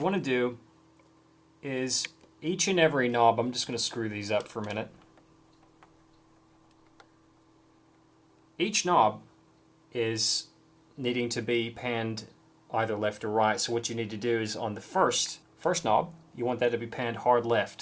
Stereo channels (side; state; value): both; identical; correlation 1.00